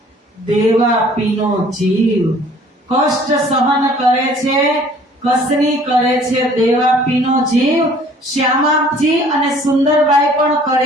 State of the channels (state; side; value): normal; both; correlation 0.54